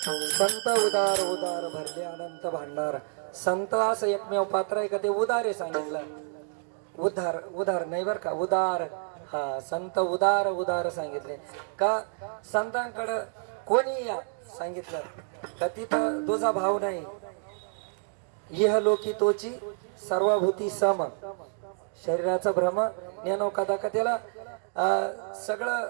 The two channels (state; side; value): silent; left; 59 dB below the other